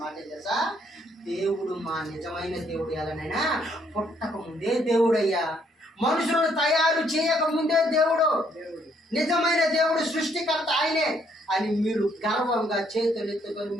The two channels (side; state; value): both; normal; correlation 0.69